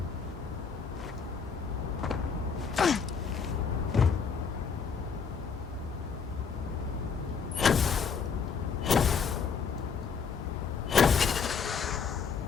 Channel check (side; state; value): right; quieter; 6.0 dB